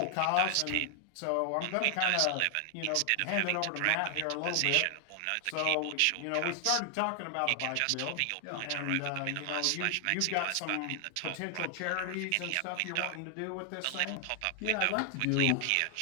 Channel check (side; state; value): both; different; correlation 0.00